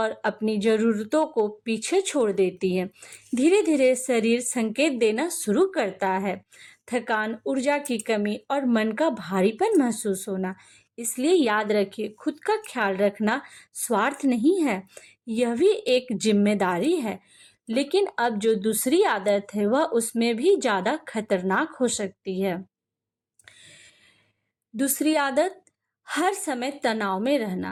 अपनी ज़रूरतों को पीछे छोड़ देती हैं। धीरे धीरे शरीर संकेत देना शुरू करता है, थकान, ऊर्जा की कमी और मन का भारीपन महसूस होना। इसलिए याद रखिए, खुद का ख्याल रखना स्वार्थ नहीं है, यह भी एक जिम्मेदारी है। लेकिन अब जो दूसरी आदत है वह उसमें भी ज़्यादा खतरनाक हो सकती है। दूसरी आदत, हर समय तनाव में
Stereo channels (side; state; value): both; identical; correlation 1.00